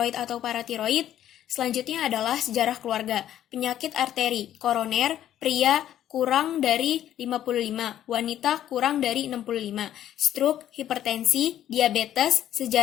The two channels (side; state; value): right; quieter; 11.5 dB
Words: atau paratiroid. Selanjutnya adalah sejarah keluarga, penyakit arteri, koroner, pria kurang dari 55, wanita kurang dari 65, stroke, hipertensi, diabetes,